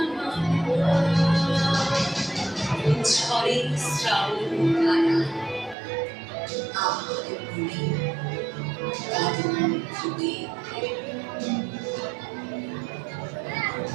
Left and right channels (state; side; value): drops out; left; at 5.8 s